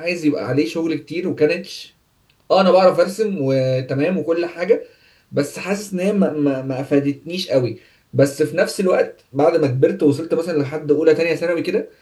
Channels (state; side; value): identical; both; correlation 1.00